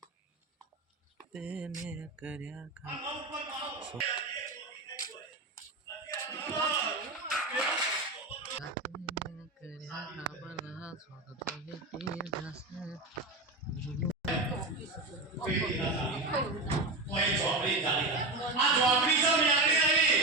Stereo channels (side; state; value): left; quieter; 3.0 dB